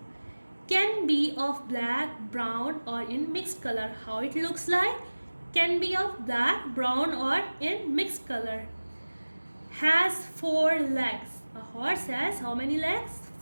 Can be of black, brown or in mixed color. How it looks like? Can be of black, brown or in mixed color. Has 4 legs. A horse has how many legs?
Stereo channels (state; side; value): inverted; both; correlation -1.00